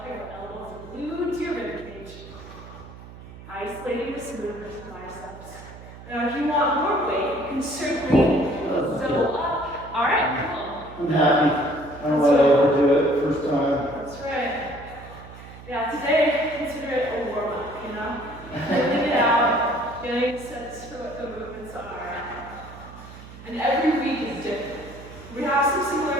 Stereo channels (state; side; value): noise; right; hum, 16 dB below the sound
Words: your elbows are glued to your ribcage. Isolating this movement to biceps. Now, if you want more weight, you can certainly double up. All right, cool. I'm happy. I don't want to overdo it first time. That's right. Yeah, today, consider it a warm-up, you know? Getting it out, getting a sense for what the movements are. And every week is different. We have some similar